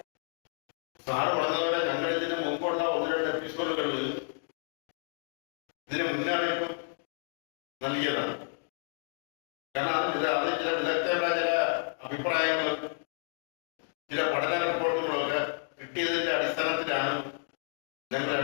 സാറ് പറഞ്ഞതുപോലെ ഞങ്ങൾ ഇതിന് മുമ്പുള്ള 1-2 എപ്പിസോഡുകളിൽ ഇതിന് മുന്നറിയിപ്പ് നൽകിയതാണ്. കാരണം അതിൽ ചില വിദഗ്ധരുടെ ചില അഭിപ്രായങ്ങളും ചില പഠന റിപ്പോർട്ടുകളൊക്കെ കിട്ടിയതിന്റെ അടിസ്ഥാനത്തിലാണ് ഞങ്ങൾ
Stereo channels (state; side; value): silent; right; digital silence